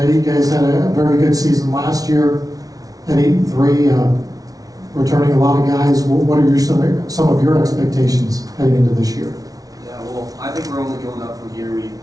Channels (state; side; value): late; left; 0.18 ms